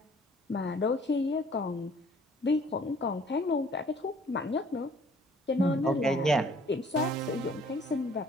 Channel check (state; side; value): normal; both; correlation 0.57